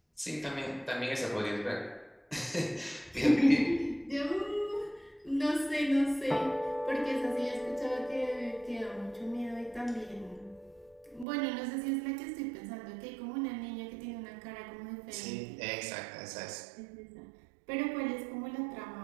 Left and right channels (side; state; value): left; drops out; at 11.2 s